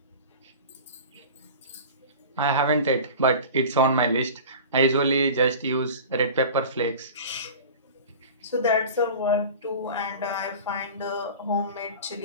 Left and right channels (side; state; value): both; inverted; correlation -0.36